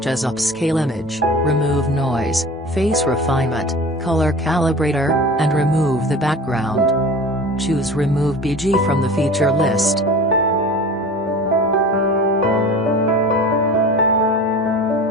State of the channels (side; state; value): both; normal; correlation 0.37